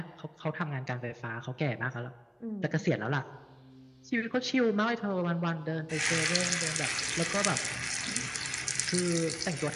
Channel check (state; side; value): identical; both; correlation 1.00